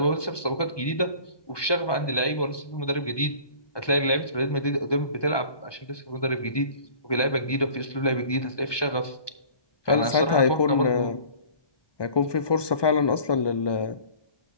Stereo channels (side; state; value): right; late; 1.2 ms